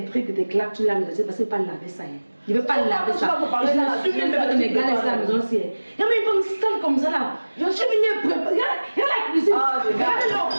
trucs, tes claques, tu laves les assiettes parce que pas laver ça. Je ne veux pas laver ça. Je suis même pas de gars à la maison. Il y a même une femme sale comme ça là. Je suis venue préparer. Regarde la cuisine. Regardez l'eau.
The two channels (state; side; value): inverted; both; correlation -1.00